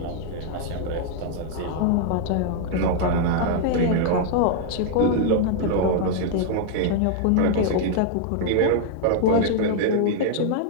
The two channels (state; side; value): different; both; correlation 0.00